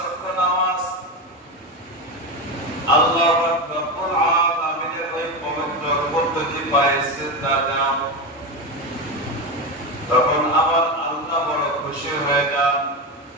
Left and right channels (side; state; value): both; normal; correlation 0.17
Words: নামাজ আল্লাহ রাব্বুল আলামিনের ওই পবিত্র পদ্ধতি পায়ে সিজদা দাও, তখন আমার আল্লাহ বড় খুশি হয়ে যান।